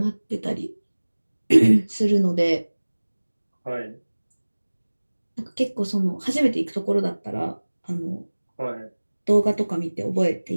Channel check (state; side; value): inverted; both; correlation -1.00